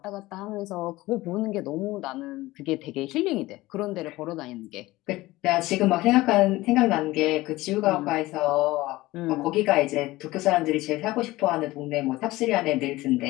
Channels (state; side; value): quieter; right; 18.7 dB